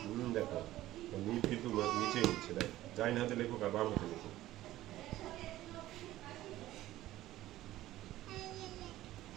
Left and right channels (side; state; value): left; quieter; 15.2 dB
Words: দেখো নীল কিন্তু নিচে উঠছে দেখ যাই না হাতে লেখো আর বাম হাতে লেখো